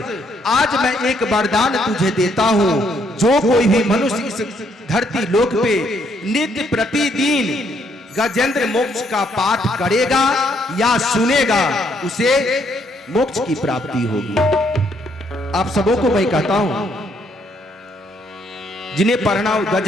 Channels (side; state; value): both; normal; correlation 0.71